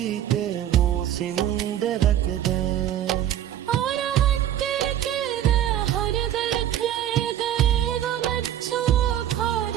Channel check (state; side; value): quieter; left; 11.2 dB